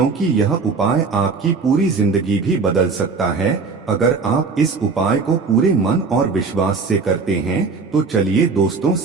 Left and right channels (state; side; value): quieter; left; 4.6 dB